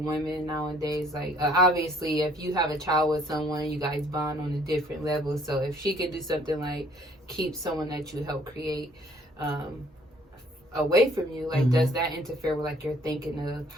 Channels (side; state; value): both; normal; correlation 0.60